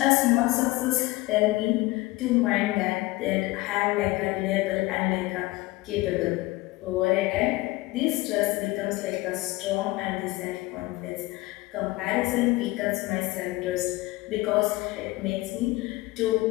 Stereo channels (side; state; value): right; quieter; 20.2 dB